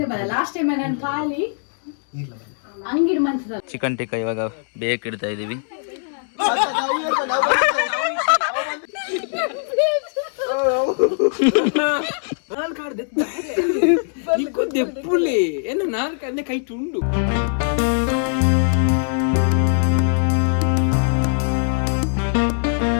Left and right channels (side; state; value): right; silent; 65 dB below the other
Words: ಬರ ಲಾಸ್ಟ್ ಟೈಮ್ ನಾನು ಖಾಲಿ ಅಂಗಿಡ್ ಮಂಚದ ಚಿಕನ್ ಟಿಕ್ಕ ಇವಾಗ ಬೇಕಿಡ್ತಾ ಇದೀವಿ.